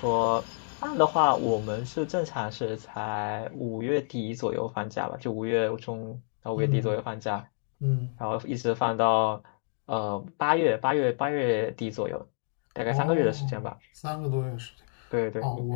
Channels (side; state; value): right; silent; digital silence